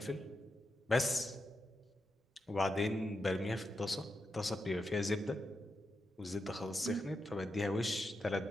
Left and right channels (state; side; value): normal; both; correlation 0.86